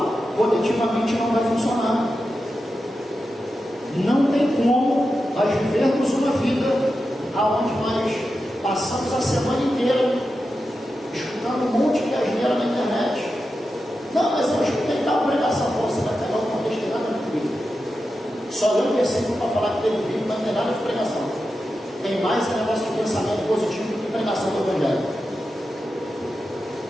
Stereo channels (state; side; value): normal; both; correlation 0.90